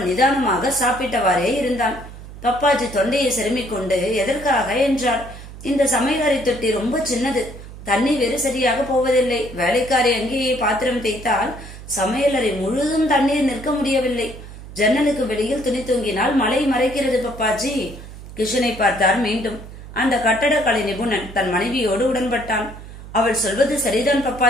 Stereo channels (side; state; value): right; noise; hum, 14 dB below the sound